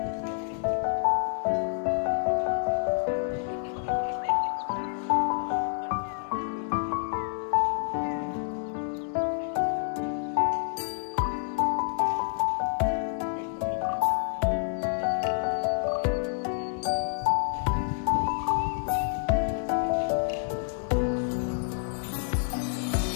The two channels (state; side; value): silent; right; digital silence